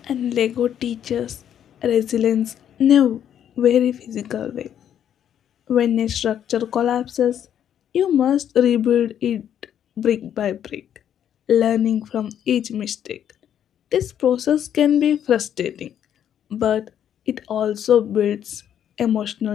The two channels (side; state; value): right; quieter; 9.7 dB